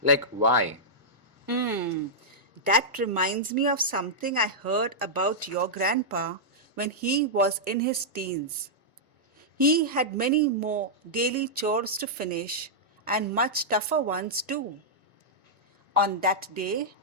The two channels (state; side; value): normal; both; correlation -0.10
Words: Like, why? That reminds me of something I heard about your grandpa when he was in his teens. He had many more daily chores to finish and much tougher ones too. On that day,